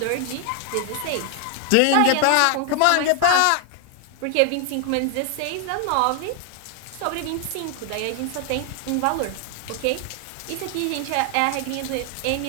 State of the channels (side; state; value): both; different; correlation 0.00